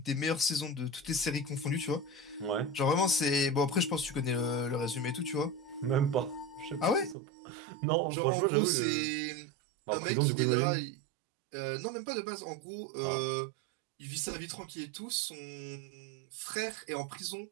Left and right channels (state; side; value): drops out; left; at 7.2 s